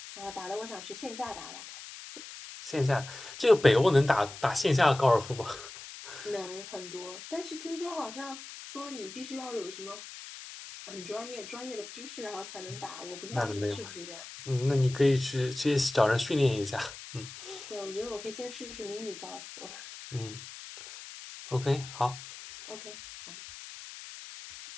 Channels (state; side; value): noise; left; hiss, 13 dB below the sound